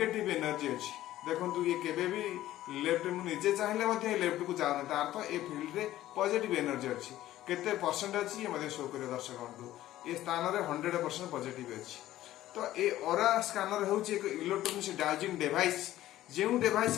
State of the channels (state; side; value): quieter; right; 14.3 dB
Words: एनर्जी अछि। देखंतु ये केबे भी लेफ्ट मु निजे चाहिले मध्ये लेफ्ट को जानो तार तो ए फील्ड रे पॉजिटिव एनर्जी अछि। केते परसेंट अछि ये मध्ये शो करे दर्शक बंधु, ए स्थान रे 100% पॉजिटिव अछि। तो ए ऑरा स्कैनर होउची एक इलेक्ट्रॉनिक डाउजिंग डिवाइस, जेउ डिवाइस